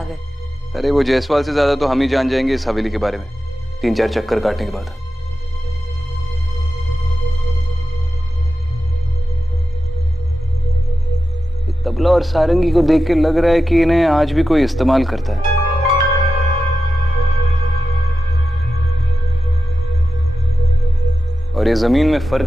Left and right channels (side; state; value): both; normal; correlation 0.92